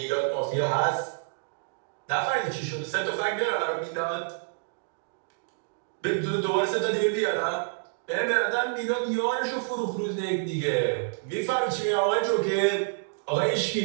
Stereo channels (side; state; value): left; silent; digital silence